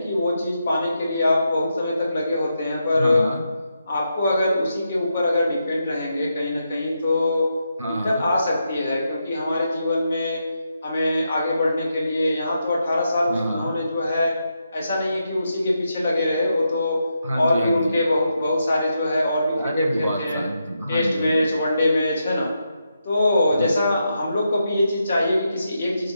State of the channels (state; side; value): inverted; both; correlation -0.84